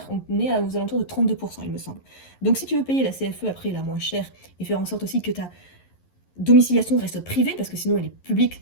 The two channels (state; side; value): late; right; 11 ms